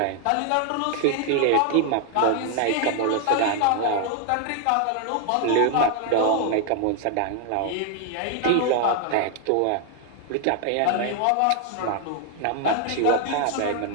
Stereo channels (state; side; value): different; both; correlation 0.00